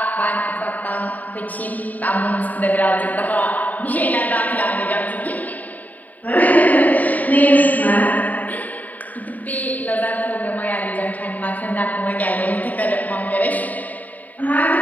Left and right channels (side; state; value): right; late; 0.077 ms